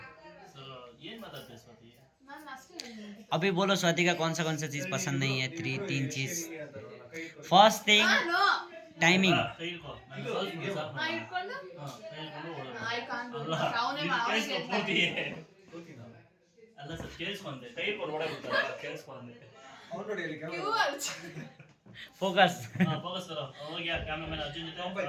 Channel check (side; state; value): both; identical; correlation 1.00